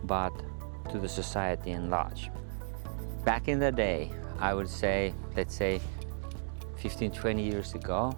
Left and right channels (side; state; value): left; silent; digital silence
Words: but to the society in large. Back in the day, I would say, let's say 15, 20 years ago,